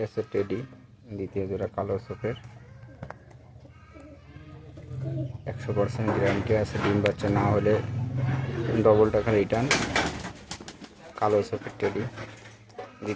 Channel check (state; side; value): identical; both; correlation 1.00